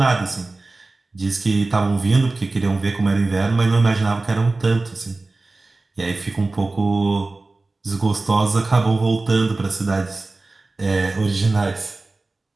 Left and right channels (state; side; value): quieter; left; 3.3 dB